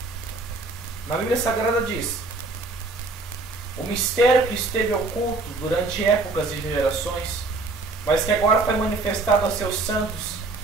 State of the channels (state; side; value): quieter; left; 3.5 dB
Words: Na Bíblia Sagrada diz: o mistério que esteve oculto durante épocas e gerações, mas que agora foi manifestado a seus santos,